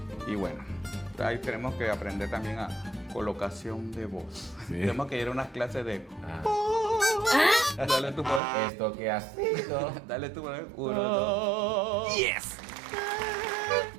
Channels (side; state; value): left; drops out; at 8.4 s